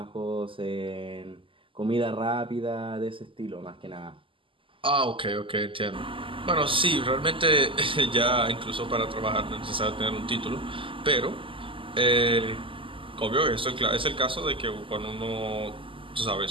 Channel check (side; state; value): left; late; 0.25 ms